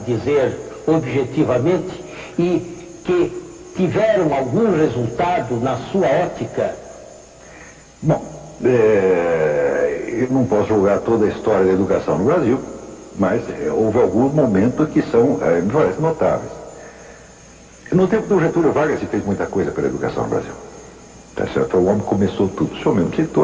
objetivamente, e que tiveram algum resultado na sua ótica? Bom, eu não posso julgar toda a história da educação no Brasil, mas houve alguns momentos que me parecem notáveis. No tempo do Getúlio Vargas se fez muita coisa pela educação no Brasil. Tá certo? O homem começou tudo. O senhor mesmo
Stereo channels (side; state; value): both; identical; correlation 1.00